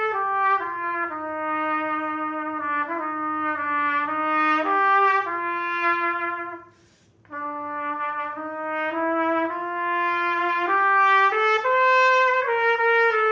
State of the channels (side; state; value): both; identical; correlation 1.00